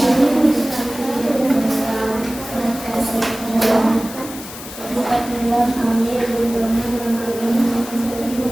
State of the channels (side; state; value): left; noise; hiss, 13 dB below the sound